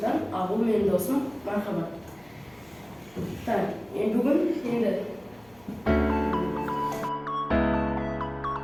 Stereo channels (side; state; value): left; noise; hum, 29 dB below the sound